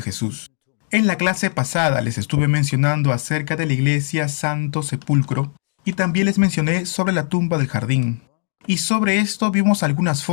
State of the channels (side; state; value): right; silent; 66 dB below the other